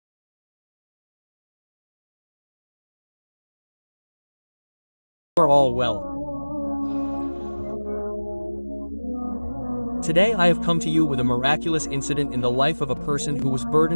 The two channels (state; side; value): inverted; both; correlation -1.00